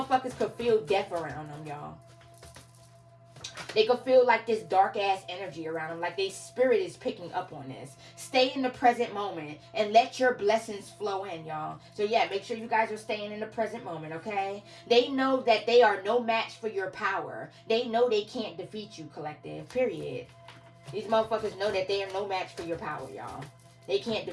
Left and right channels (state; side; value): identical; both; correlation 1.00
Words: could feel death around them, y'all. They could feel like this dark ass energy around them. Like their spirit is picking up on this. Stay in the present moment and let your blessings flow in, y'all. So yeah, make sure you guys are staying in the present moment, okay? They know that they are no match for your power. They know they can't defeat you, collective. Period. These motherfuckers know that they are no match for your power, y'all. They can't